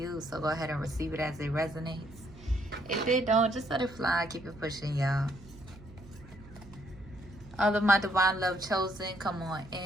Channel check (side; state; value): right; noise; hum, 20 dB below the sound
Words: So go ahead and receive it as it resonates. If it don't, just let it fly. Keep it pushing, y'all. All of my divine love chosen, come on